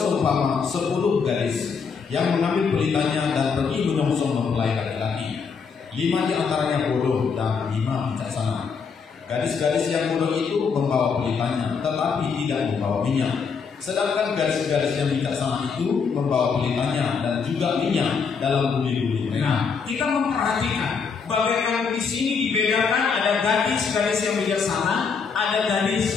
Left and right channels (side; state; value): right; quieter; 5.7 dB